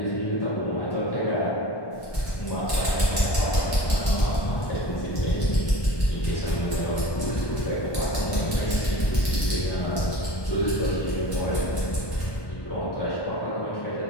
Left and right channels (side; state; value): right; late; 1.2 ms